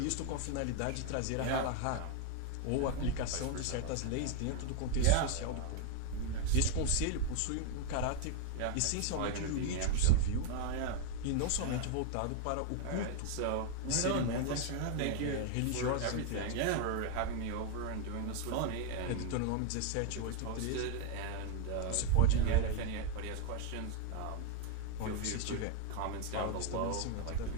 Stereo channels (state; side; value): different; both; correlation 0.00